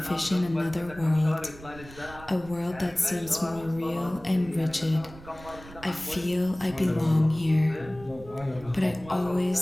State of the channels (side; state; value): right; noise; rumble, 18 dB below the sound